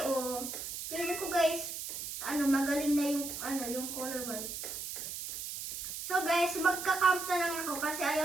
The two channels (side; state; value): right; noise; hiss, 7 dB below the sound